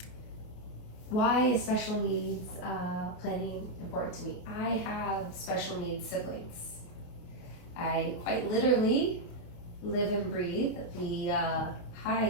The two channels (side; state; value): right; late; 28 ms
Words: why is special needs planning important to me? I have special needs siblings. I quite literally live and breathe the